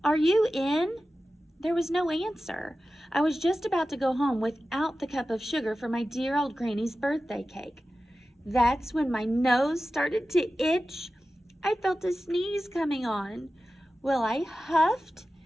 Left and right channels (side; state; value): both; normal; correlation 0.94